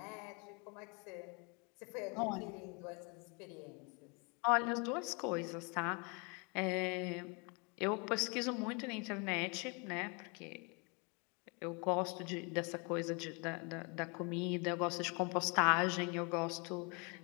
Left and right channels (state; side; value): quieter; right; 32.2 dB